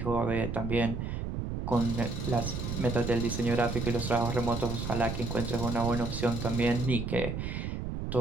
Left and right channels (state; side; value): noise; right; rumble, 4 dB below the sound